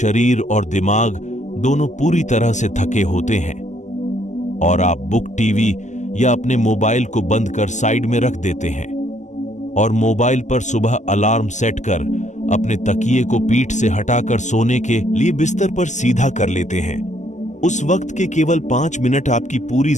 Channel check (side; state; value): right; late; 0.34 ms